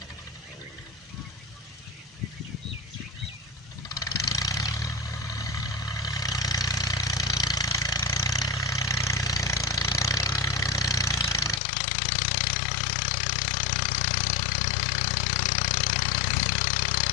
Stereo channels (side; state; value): right; drops out; at 11.6 s